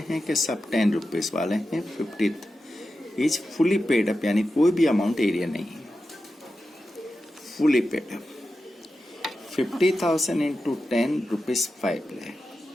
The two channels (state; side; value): normal; both; correlation 0.91